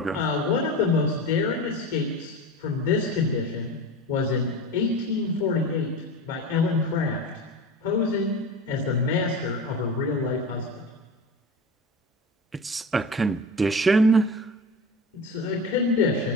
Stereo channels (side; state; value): both; normal; correlation 0.29